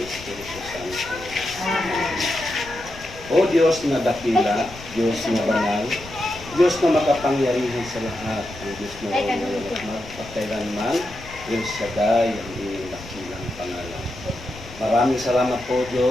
Santo. O Diyos na dakila, Diyos na banal, Diyos na makapangyarihan sa lahat, ang Diyos na walang magpakailanman, El Shaddai, ang iyong dakilang pangalan. Maraming salamat po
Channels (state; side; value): noise; left; rumble, 17 dB below the sound